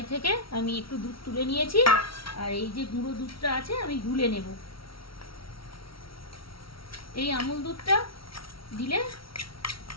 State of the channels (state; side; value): late; right; 0.74 ms